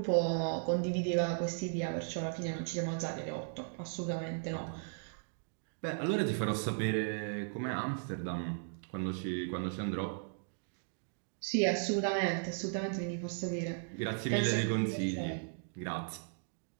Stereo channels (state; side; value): silent; left; digital silence